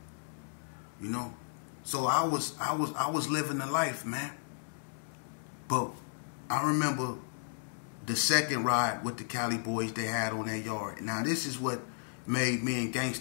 So I was living the life, man. But I remember the second ride with the Cali boys they had on their yard. Now this is what made me and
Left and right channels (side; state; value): right; silent; digital silence